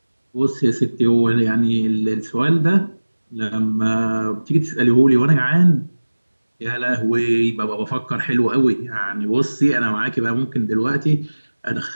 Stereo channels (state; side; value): inverted; both; correlation -1.00